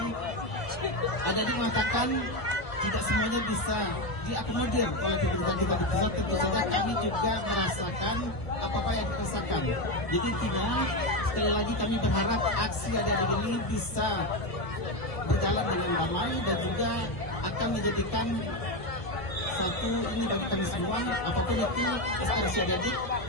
adik-adik mengatakan tidak semuanya bisa diakomodir oleh pemerintah kita di pusat, tentu saja kami juga merasakan apa-apa yang dirasakan. Jadi intinya sekali lagi kami berharap aksi adik-adik ini bisa berjalan dengan damai dan juga akan menjadikan satu ini bagi kami semua, apapun itu aspirasi adik-adik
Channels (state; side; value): late; right; 1.1 ms